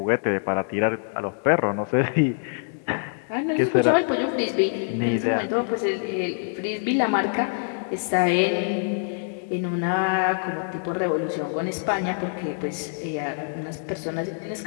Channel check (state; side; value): silent; right; 62 dB below the other